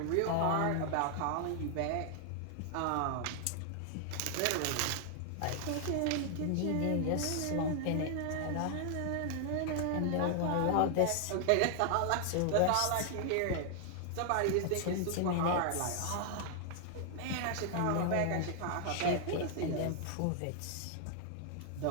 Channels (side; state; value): both; different; correlation 0.00